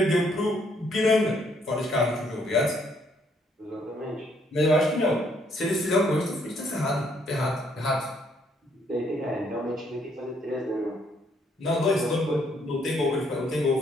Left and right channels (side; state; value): both; normal; correlation 0.69